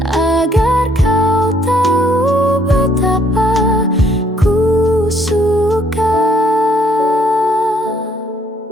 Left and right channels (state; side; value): normal; both; correlation 0.65